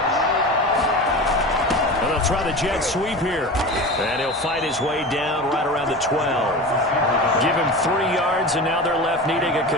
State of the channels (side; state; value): both; normal; correlation 0.30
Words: Try the jet sweep here. And he'll fight his way down right around the 12. Give him 3 yards, and now they're left needing a